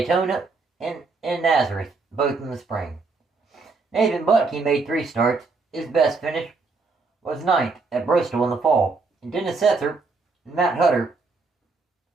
and in Nazareth, both in the spring. Nathan Butke made 3 starts. His best finish was 9th at Bristol in the fall. And Dennis Setzer and Matt Hutter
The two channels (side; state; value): left; quieter; 4.1 dB